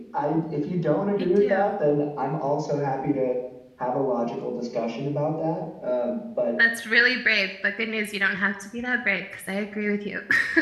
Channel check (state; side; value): identical; both; correlation 1.00